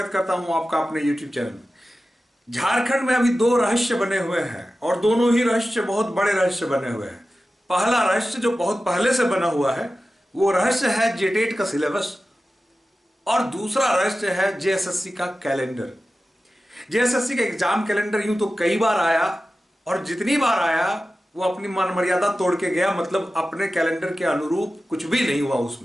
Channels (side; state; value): both; normal; correlation 0.94